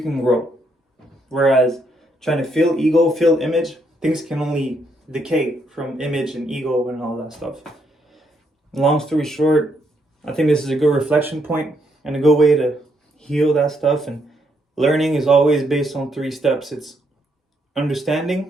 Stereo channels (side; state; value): both; normal; correlation 0.75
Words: grow. Whereas trying to fill ego, fill image, things can only decay from image and ego and all that stuff. Long story short, I think this is a good reflection point and a good way to heal that stuff. And learning is always based on 3 steps. It's